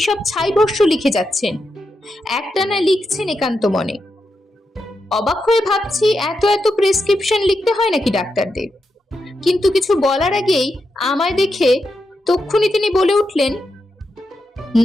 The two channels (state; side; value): normal; both; correlation 0.86